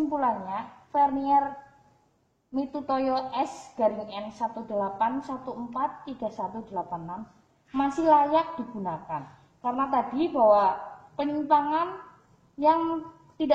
vernier Mitutoyo S-N 18143186 masih layak digunakan. Karena tadi bahwa penyimpangan yang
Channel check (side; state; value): both; identical; correlation 1.00